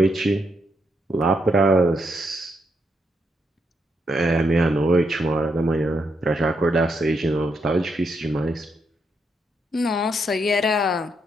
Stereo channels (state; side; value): normal; both; correlation 0.79